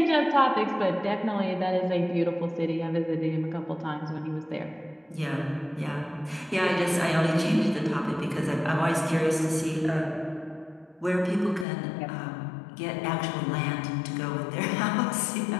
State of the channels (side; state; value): right; drops out; at 11.7 s